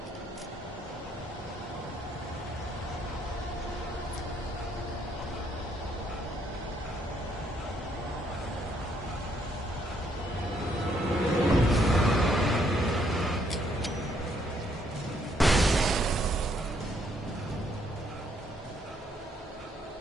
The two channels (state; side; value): normal; both; correlation 0.70